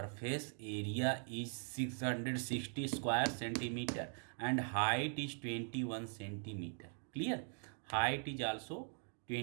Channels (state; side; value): silent; left; 50 dB below the other